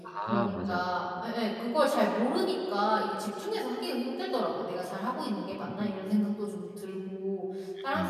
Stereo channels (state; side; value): identical; both; correlation 1.00